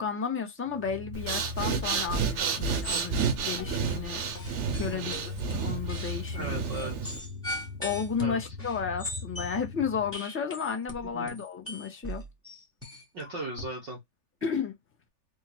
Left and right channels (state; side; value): late; left; 3.4 ms